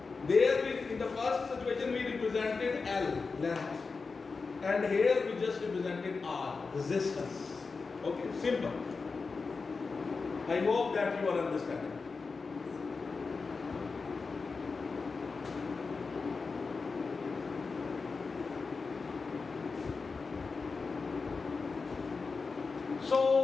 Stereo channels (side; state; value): right; quieter; 4.5 dB